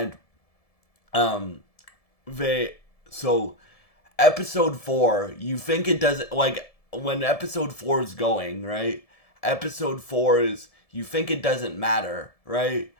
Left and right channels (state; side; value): late; right; 1.7 ms